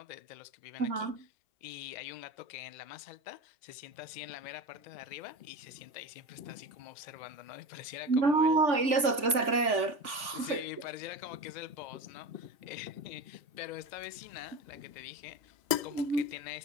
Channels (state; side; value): late; left; 3.5 ms